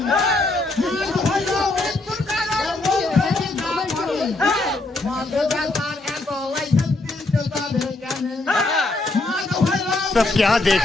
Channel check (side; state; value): right; quieter; 3.0 dB